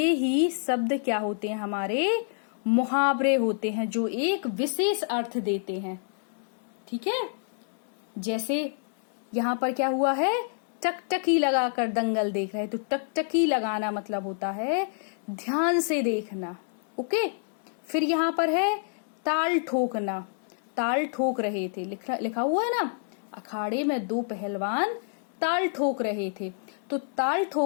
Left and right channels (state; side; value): silent; right; digital silence